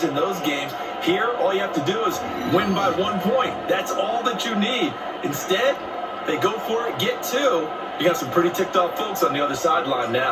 in those games. Here, all you have to do is win by 1 point. That's all that you need. Instead, they go for it, get 2. You got some pretty ticked off folks on the other sideline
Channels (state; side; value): identical; both; correlation 1.00